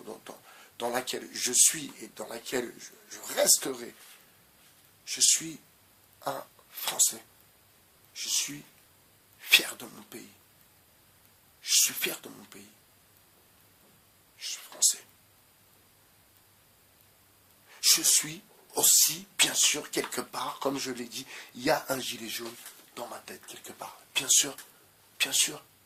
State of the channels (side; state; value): both; identical; correlation 1.00